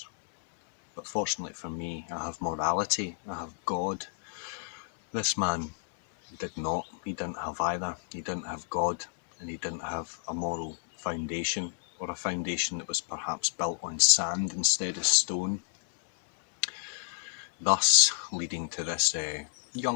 But fortunately for me, I have morality, I have God. This man did not. He didn't have either. He didn't have God, and he didn't have a moral foundation, or a foundation that was perhaps built on sand instead of stone. Thus leading to this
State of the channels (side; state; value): right; silent; digital silence